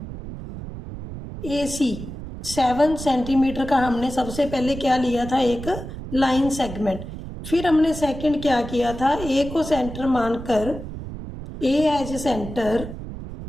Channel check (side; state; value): right; noise; rumble, 10 dB below the sound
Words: AC 7 centimetre का हमने सबसे पहले क्या लिया था, एक लाइन सेगमेंट। फिर हमने सेकंड क्या किया था, ए को सेंटर मानकर ए एज सेंटर